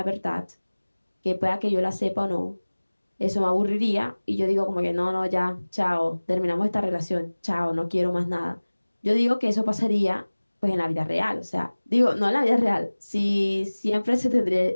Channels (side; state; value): both; inverted; correlation -1.00